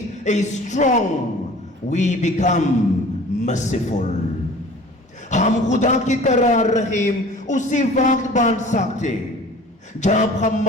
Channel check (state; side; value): normal; both; correlation 0.45